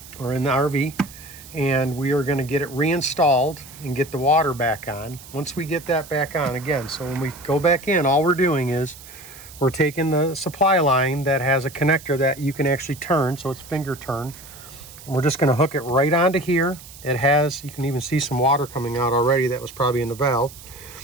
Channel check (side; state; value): right; noise; hiss, 18 dB below the sound